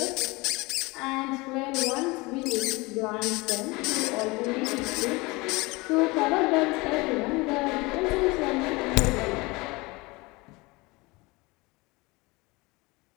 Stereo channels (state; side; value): quieter; right; 24.0 dB